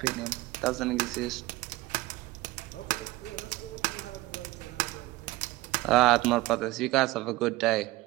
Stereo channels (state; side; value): quieter; left; 19.6 dB